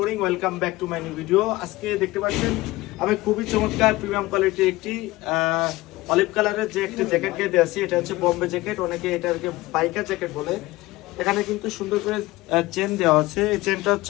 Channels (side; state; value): right; quieter; 19.2 dB